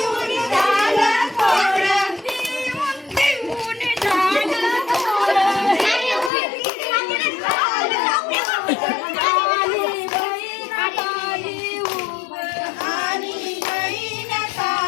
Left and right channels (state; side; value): drops out; right; at 6.3 s